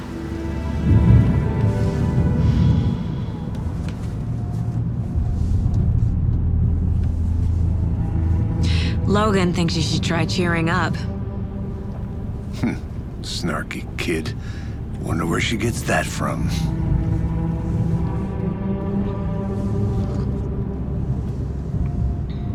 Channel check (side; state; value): both; identical; correlation 1.00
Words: Logan thinks you should try cheering up. Snarky kid. Wonder where she gets that from.